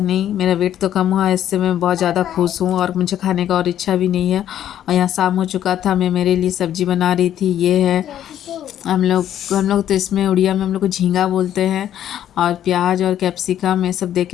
मेरा वेट तो कम हुआ, इससे मैं बहुत ज़्यादा खुश हूँ और मुझे खाने का और इच्छा भी नहीं है। और यहाँ शाम हो चुका था, मैं मेरे लिए सब्ज़ी बना रही थी। ये है हम लोग तो इसमें उड़िया में हम लोग को झींगा बोलते हैं। और प्याज और कैप्सिकम ये सब दे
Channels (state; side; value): quieter; right; 10.9 dB